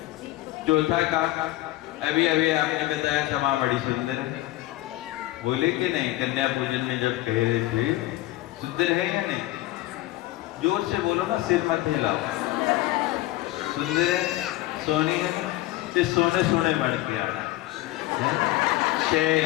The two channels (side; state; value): right; quieter; 16.9 dB